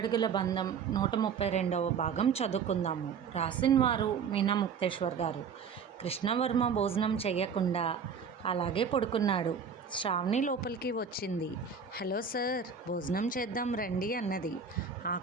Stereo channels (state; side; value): quieter; left; 6.2 dB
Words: బంధం 132వ భాగం చదువుకుందాము. రాసిన వారు మీనా ముక్తేశ్వర్ గారు. కృష్ణవర్మ భోజనం చెయ్యకుండా అలాగే పడుకున్నాడు. శ్రావణి లోపలికి వచ్చింది. హలో సార్, భోజనం చేద్దాం రండి అన్నది.